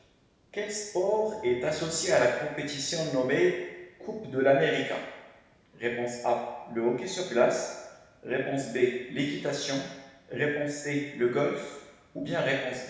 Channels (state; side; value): identical; both; correlation 1.00